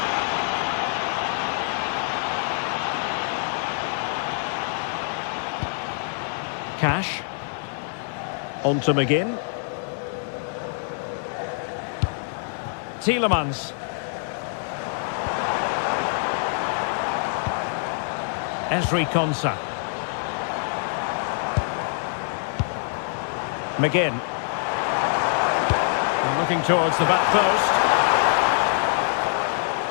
Cash. On to McGinn. Tielemans. Ezri Konsa. McGinn. And looking towards the back post.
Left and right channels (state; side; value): silent; right; 62 dB below the other